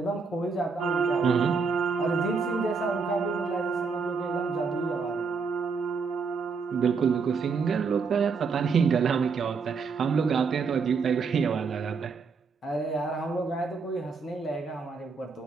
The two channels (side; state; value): left; quieter; 5.0 dB